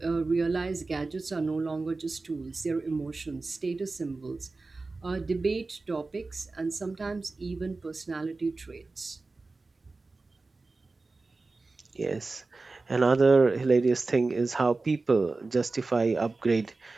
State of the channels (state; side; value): quieter; left; 3.6 dB